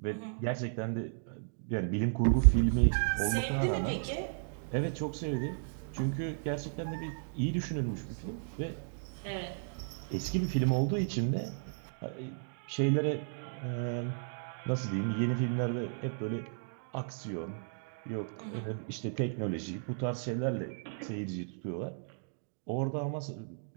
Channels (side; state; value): left; silent; digital silence